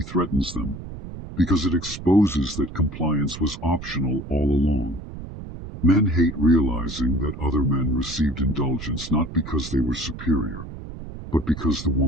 threatens them because it exposes that compliance was optional all along. Men hate realizing that other men received indulgence not because they were superior, but because the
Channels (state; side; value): noise; right; rumble, 11 dB below the sound